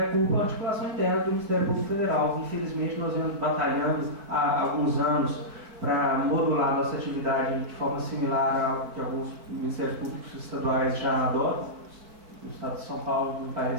culpa a articulação interna do Ministério Público Federal. Infelizmente, nós vemos batalhando há alguns anos para modular nossa atividade de forma similar ao que alguns Ministérios Públicos estaduais já adotam. No estado de São Paulo, me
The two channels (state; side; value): late; left; 4.6 ms